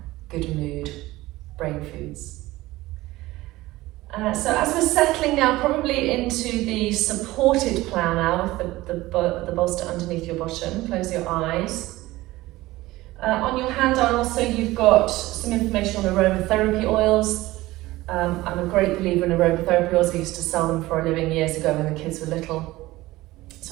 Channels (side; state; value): left; quieter; 18.2 dB